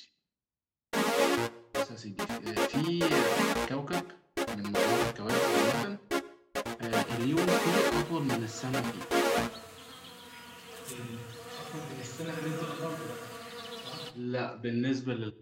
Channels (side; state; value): both; identical; correlation 1.00